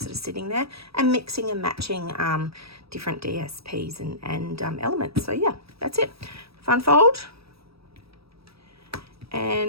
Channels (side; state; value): left; late; 0.77 ms